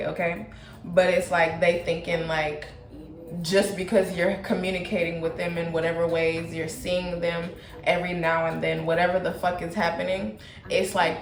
okay? But it's like they thinking like just because you're communicating with them in whatever ways, you're seeing them every now and then, whatever the fuck is happening, it's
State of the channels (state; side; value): identical; both; correlation 1.00